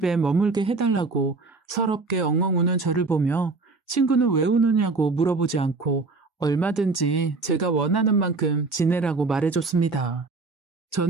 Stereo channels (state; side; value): quieter; left; 3.8 dB